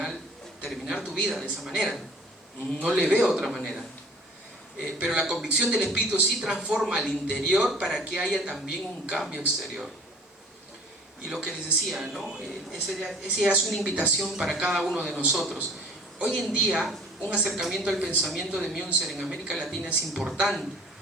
terminar tu vida de esa manera. No le veo otra manera. Pero la convicción del Espíritu sí transforma al interior para que haya también un cambio exterior. Y lo que les decía, ¿no? Esa es una invitación para cada uno de nosotros. Hoy en día, un acercamiento al pensamiento de Münzer en América Latina es importante,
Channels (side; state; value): both; normal; correlation 0.50